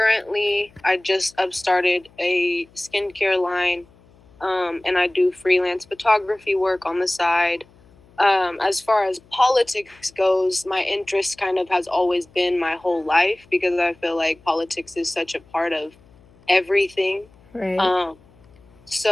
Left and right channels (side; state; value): left; noise; hum, 29 dB below the sound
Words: just started a skincare line, and I do freelance photography work on the side. As far as politics goes, my interest kind of has always been my whole life because I feel like politics is such a part of everything. Right.